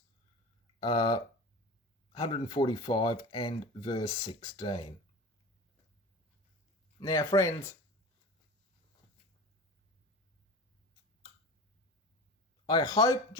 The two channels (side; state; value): both; normal; correlation 0.33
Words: 145 and verse 16. Now, friends, I hope